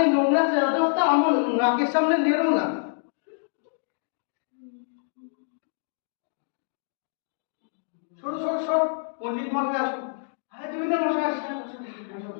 নোংরা চাদরটা আমার নাকের সামনে নেড়ো না। সরো সরো সরো, পণ্ডিত মশাই আসুন। হ্যাঁ, জমিদার মশাই আসুন।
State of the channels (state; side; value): silent; right; digital silence